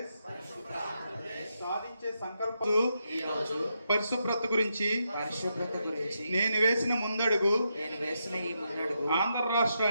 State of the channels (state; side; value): inverted; both; correlation -0.83